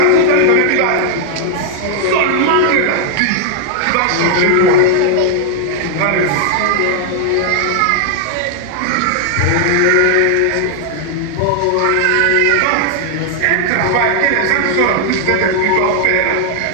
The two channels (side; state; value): both; different; correlation 0.00